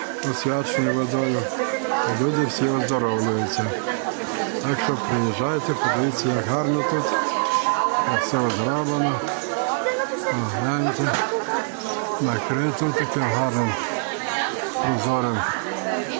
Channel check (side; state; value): left; silent; 63 dB below the other